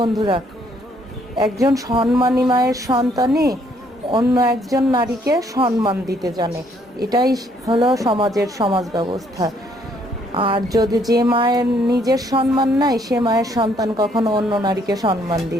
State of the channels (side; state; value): both; normal; correlation 0.67